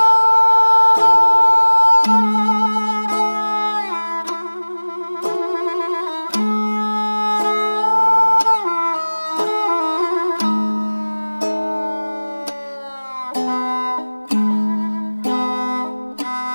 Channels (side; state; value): both; inverted; correlation -1.00